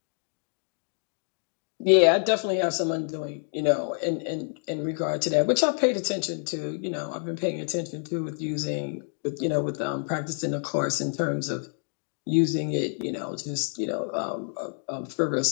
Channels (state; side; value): silent; right; 56 dB below the other